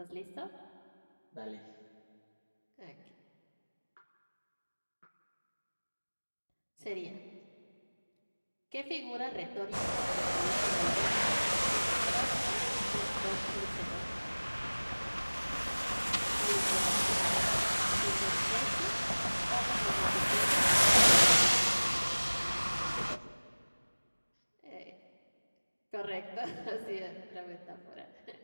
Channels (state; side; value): inverted; both; correlation -1.00